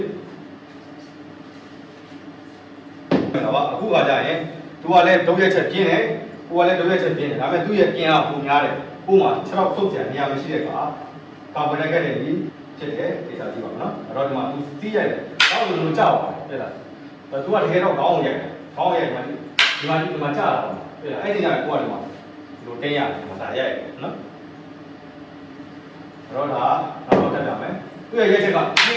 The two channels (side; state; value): both; identical; correlation 1.00